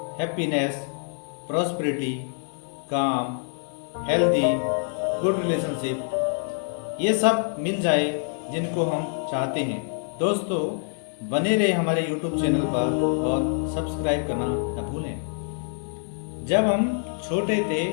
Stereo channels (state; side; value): silent; right; 61 dB below the other